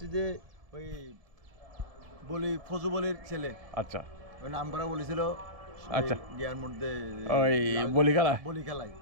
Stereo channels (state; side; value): late; left; 1.7 ms